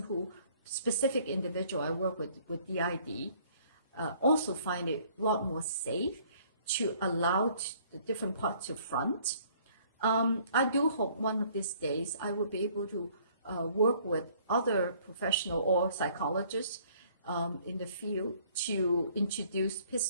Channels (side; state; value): both; inverted; correlation -0.59